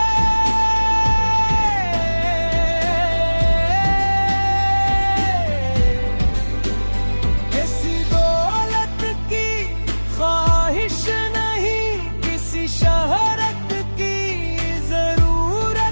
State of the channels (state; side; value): inverted; both; correlation -1.00